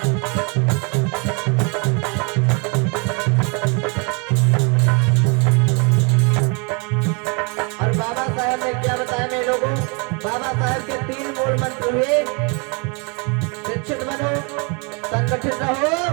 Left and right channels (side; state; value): left; quieter; 33.4 dB